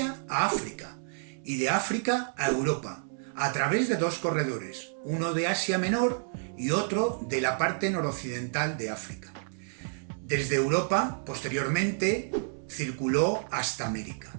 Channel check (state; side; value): silent; left; 58 dB below the other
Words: a África y de África a Europa, a través de dos corredores, uno de Asia Menor y otro de la parte noroccidental de África. Desde Europa, posteriormente, circuló hasta América.